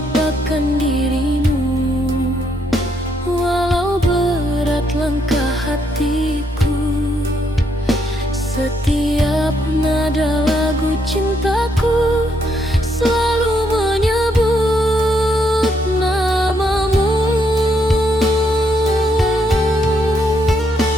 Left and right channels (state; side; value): normal; both; correlation 0.74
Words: dirimu, walau berat langkah hatiku. Setiap nada lagu cintaku selalu menyebut namamu.